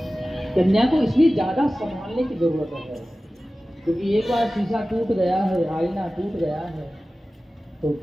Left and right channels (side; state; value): both; normal; correlation 0.96